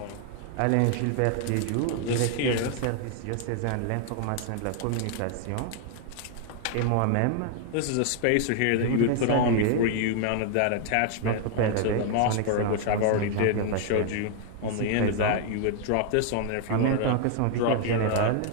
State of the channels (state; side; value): different; both; correlation 0.00